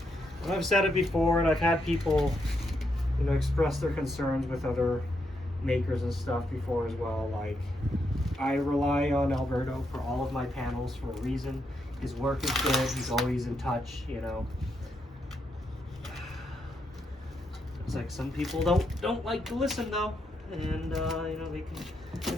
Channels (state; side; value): normal; both; correlation 0.80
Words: And I've said it before, and I've had people, you know, express their concerns with other makers and stuff before as well. Like, I rely on Alberto for all of my panels for a reason. His work is good. He's always in touch, you know. It's like some people don't like to listen though, and you know, they can.